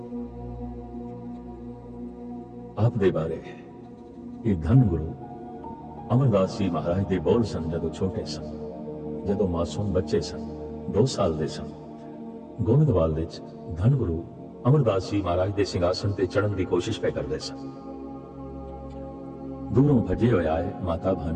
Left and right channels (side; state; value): both; identical; correlation 1.00